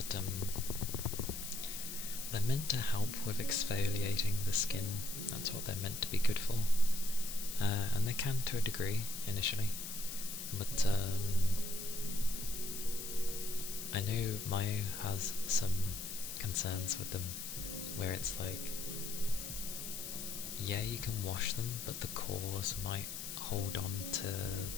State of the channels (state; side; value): noise; left; hiss, 7 dB below the sound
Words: they're meant to help with exfoliating the skin. That's what they're meant to be good for, and they can to a degree initially, but I know Mayu has some concerns with them, where it's like, yeah, you can wash them, but the cores might hold on to